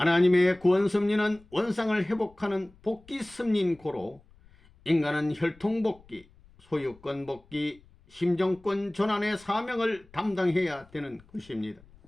구원 섭리는 원상을 회복하는 복귀 섭리인 고로 인간은 혈통 복귀, 소유권 복귀, 심정권 전환의 사명을 담당해야 되는 것입니다.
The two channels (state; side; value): noise; left; rumble, 27 dB below the sound